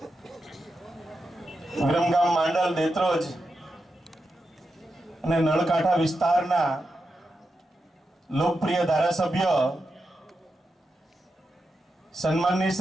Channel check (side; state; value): both; normal; correlation 0.88